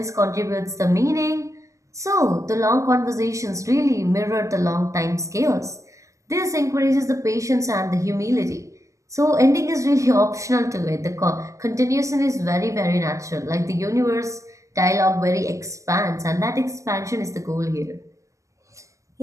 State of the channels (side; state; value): left; late; 0.16 ms